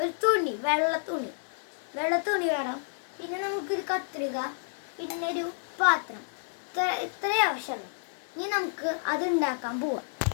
തുണി, വെള്ള തുണി വേണം. പിന്നെ നമുക്കൊരു കത്രിക, പിന്നെ ഒരു പാത്രം. ഇത്രയും ആവശ്യമുള്ളൂ. ഇനി നമുക്ക് അത് ഉണ്ടാക്കാൻ പോവാം.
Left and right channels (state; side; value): silent; right; 58 dB below the other